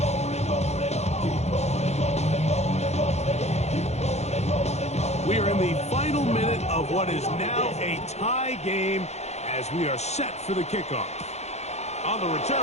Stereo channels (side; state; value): right; late; 0.32 ms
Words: We are in the final minute of what is now a tie game as we are set for the kickoff. On the